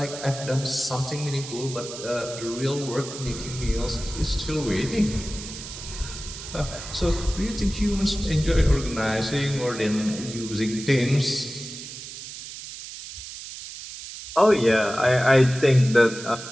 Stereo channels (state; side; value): noise; right; hiss, 11 dB below the sound